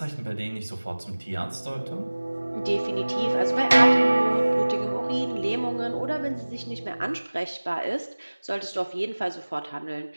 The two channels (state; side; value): inverted; both; correlation -1.00